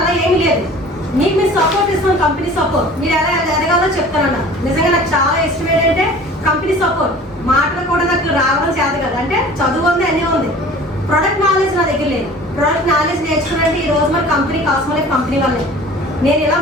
అలా ఏమీ లేదు. మీకు మీరు సపోర్ట్ ఇస్తాం, కంపెనీ సపోర్ట్. మీరు ఎలా ఎదగాలో చెప్తానన్నా. నిజంగా నాకు చాలా ఇష్టం ఏంటంటే కంపెనీ సపోర్ట్. మాటలు కూడా నాకు రావడం చేత కదా, అంటే చదువు ఉంది, అన్నీ ఉంది. ప్రొడక్ట్ నాలెడ్జ్ నా దగ్గర లేదు. ప్రొడక్ట్ నాలెడ్జ్ నేర్చుకున్నానంటే ఈ రోజు మన కంపెనీ కాస్మోలైట్ కంపెనీ వల్లే. నేను ఇలా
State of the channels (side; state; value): both; normal; correlation 0.44